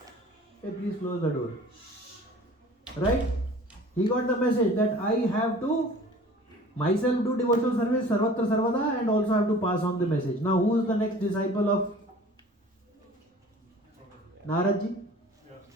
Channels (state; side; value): normal; both; correlation 0.46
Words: Hey, please close the door. Right? He got the message that I have to myself do devotional service, Sarvatra Sarvada, and also have to pass on the message. Now who is the next disciple of Naradji?